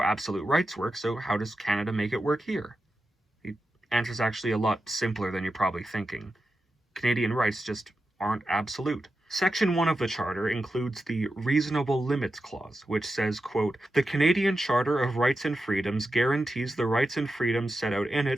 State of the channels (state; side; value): normal; both; correlation 0.90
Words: absolute rights work, so how does Canada make it work here? The answer's actually a lot simpler than you're probably thinking. Canadian rights just aren't absolute. Section 1 of the Charter includes the Reasonable Limits Clause, which says, quote, the Canadian Charter of Rights and Freedoms guarantees the rights and freedoms set out in